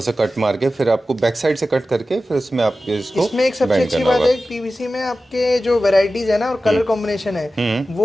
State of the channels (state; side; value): normal; both; correlation 0.94